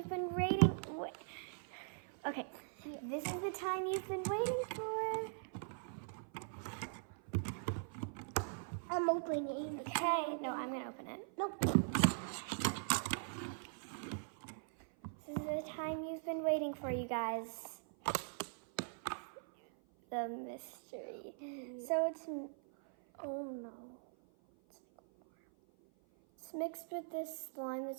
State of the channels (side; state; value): left; silent; 50 dB below the other